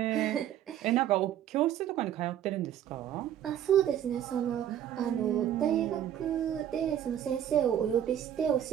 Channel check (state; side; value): quieter; left; 10.7 dB